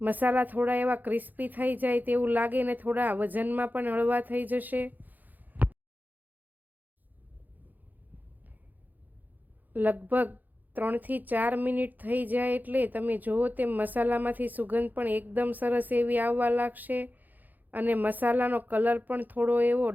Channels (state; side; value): late; left; 0.084 ms